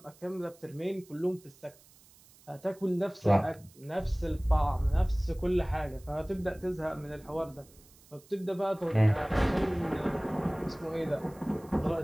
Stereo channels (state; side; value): noise; right; hiss, 26 dB below the sound